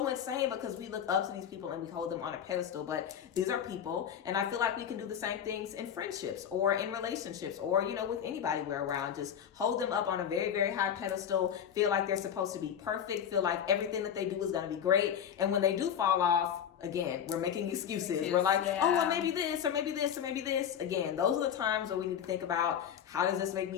insane because we look up to these people and we hold them on a pedestal, but these are people, and I feel like we can do the same things in friendships or in relationships or, with anybody we're around. Just hold them up on a very, very high pedestal, feel like they're supposed to be perfect, feel like everything that they do is going to be great, and when they do fall off, again, we're making excuses. We're like, oh, well, maybe this, or maybe this, or maybe this. Again, those are the times where we need to think about, how does this make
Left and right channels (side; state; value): right; quieter; 8.8 dB